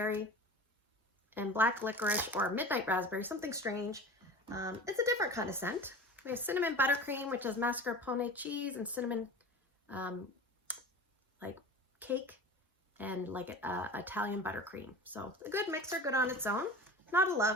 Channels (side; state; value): both; normal; correlation 0.36